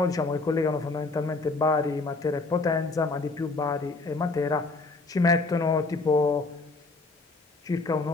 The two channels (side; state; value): right; quieter; 3.5 dB